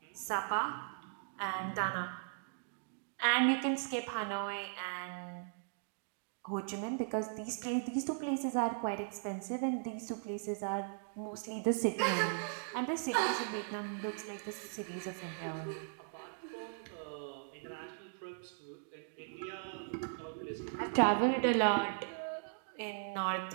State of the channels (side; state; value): left; silent; digital silence